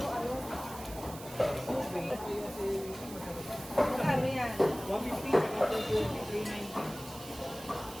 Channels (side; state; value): right; noise; hiss, 15 dB below the sound